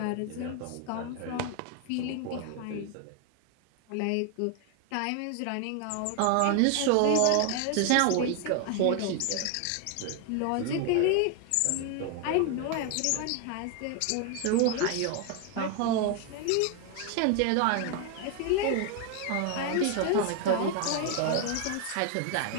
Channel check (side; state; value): both; different; correlation 0.01